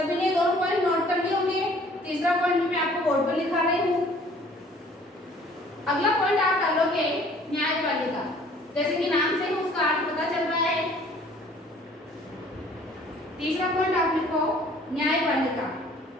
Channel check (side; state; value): both; normal; correlation 0.54